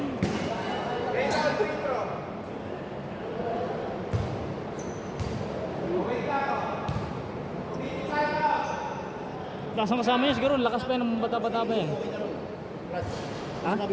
Raise out free throw. Tapos ang kasama niya siguro, lakas pa yan ng bata-bata pa yan. Brad, Ha?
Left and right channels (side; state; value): both; identical; correlation 1.00